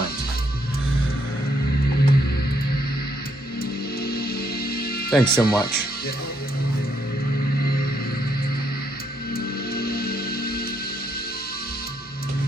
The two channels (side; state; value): both; normal; correlation 0.74